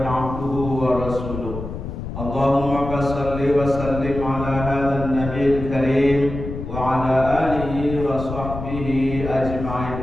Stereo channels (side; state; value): left; noise; rumble, 8 dB below the sound